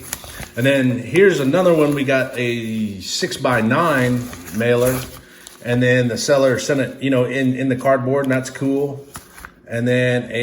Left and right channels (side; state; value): both; identical; correlation 1.00